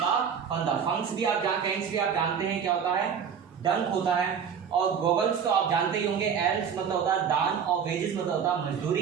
का फंदा। फंक्स भी आप जानते हैं, पैंट्स भी आप जानते हैं क्या होता है, डंक होता है। और गोगल्स तो आप जानते ही होंगे, एल्स मतलब होता है दान, और वेजेस मतलब होता है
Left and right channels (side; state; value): left; quieter; 7.3 dB